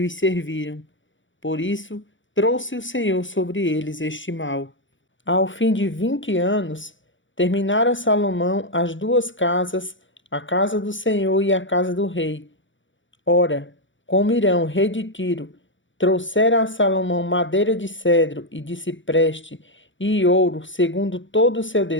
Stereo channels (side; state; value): right; late; 0.55 ms